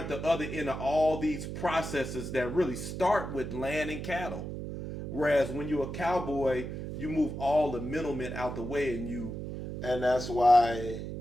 other end of all these processes that really start with land and cattle. Whereas when you're a cowboy, you move all the middlemen out the way, and that's why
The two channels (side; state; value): right; noise; hum, 6 dB below the sound